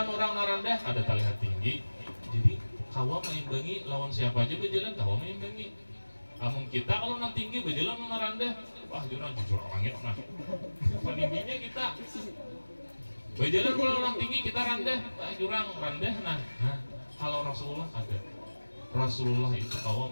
orang rendah kada terlihat tinggi. Jadi kawa meimbangi lawan siapa aja berjalan kawa meimbangi. Namun kita kalau nang tinggi berjalan lawan rendah, wah jujur langit nah. Peningginya kita berjalan lawan orang tinggi kita rendah, jurang rendah nah. Kalau Rasulullah ada, Rasulullah itu kawa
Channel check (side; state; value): both; inverted; correlation -1.00